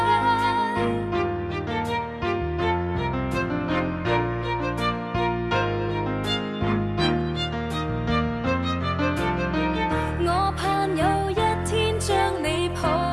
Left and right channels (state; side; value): identical; both; correlation 1.00